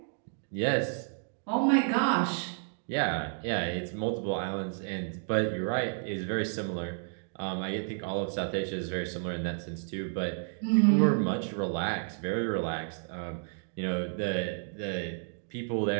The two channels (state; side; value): silent; left; digital silence